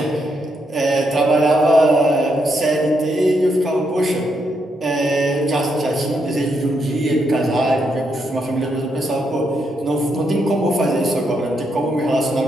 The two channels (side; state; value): both; normal; correlation 0.79